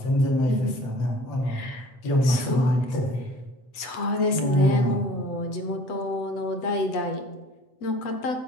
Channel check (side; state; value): right; late; 8.1 ms